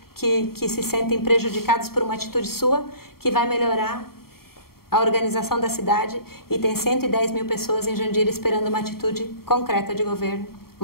que se sentem prejudicados por uma atitude sua, que vai melhorar a organização da cidade e tem 110 mil pessoas em Jandira esperando uma atitude concreta de governo,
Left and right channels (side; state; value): right; late; 0.94 ms